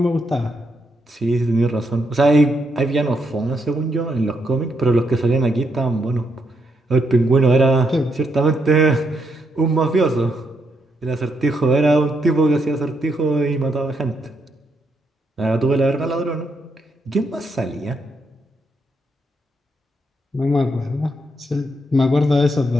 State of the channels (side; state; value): both; normal; correlation 0.79